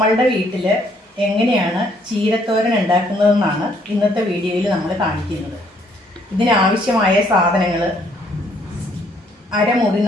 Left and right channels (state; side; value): normal; both; correlation 0.66